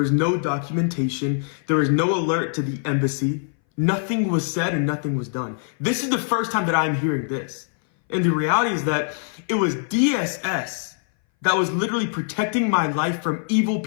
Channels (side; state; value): right; silent; 60 dB below the other